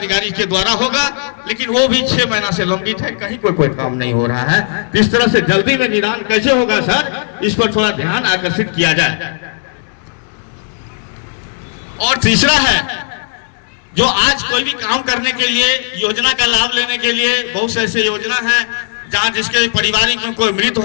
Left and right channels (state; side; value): silent; right; digital silence